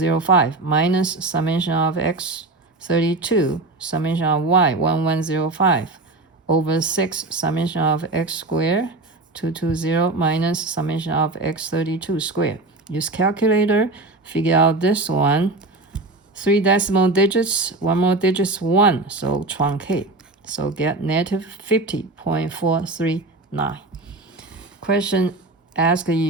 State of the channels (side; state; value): left; quieter; 3.1 dB